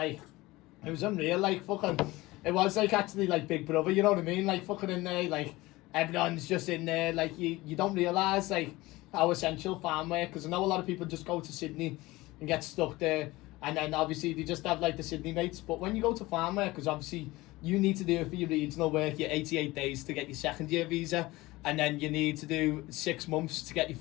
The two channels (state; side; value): quieter; right; 19.9 dB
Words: it was unreal, like fucking it was like actually like Big Brother, you know what I mean? Like fucking in there, like everyone's just in there, like you don't realise like how essential farm work, because I know a lot of people just go to Sydney and get stuck there, and then obviously they just have like the Sydney mates, but when you go to farm work, because obviously you need to do it for your regional work, your 88 days to get your second year visa, and then you need to do 6 months to get your